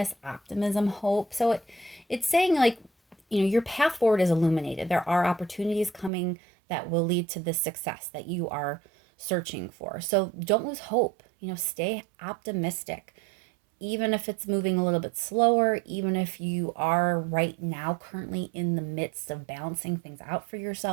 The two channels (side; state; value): left; drops out; at 6.1 s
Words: optimism, hope. So it's saying your path forward is illuminated. There are opportunities coming that will lead to the success that you are searching for. So don't lose hope. Stay optimistic. Even if it's moving a little bit slower, even if you are right now currently in the midst of balancing things out for